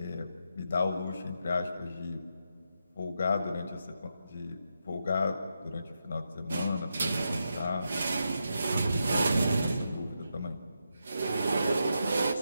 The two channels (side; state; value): both; inverted; correlation -0.84